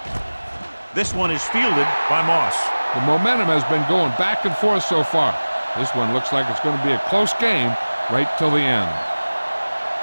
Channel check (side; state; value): both; inverted; correlation -1.00